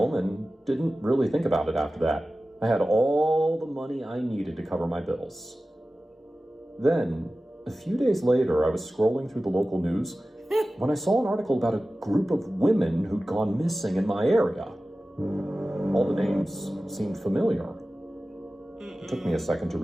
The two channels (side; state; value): both; normal; correlation 0.96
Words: and didn't really think about it after that. I had all the money I needed to cover my bills. Then, a few days later, I was scrolling through the local news when I saw an article about a group of women who'd gone missing in my area. All the names seemed familiar. It took me a second to